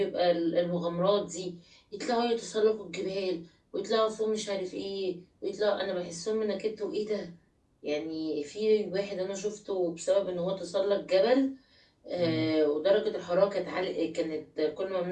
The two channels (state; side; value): identical; both; correlation 1.00